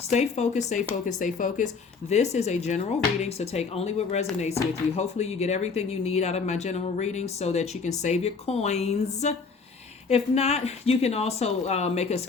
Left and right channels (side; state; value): right; quieter; 4.9 dB